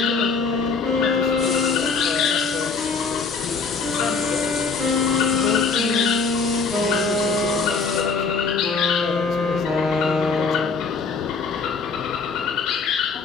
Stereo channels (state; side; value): quieter; right; 4.8 dB